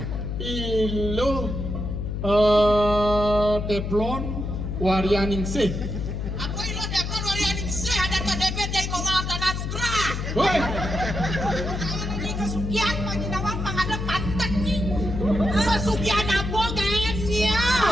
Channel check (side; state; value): left; noise; hum, 3 dB below the sound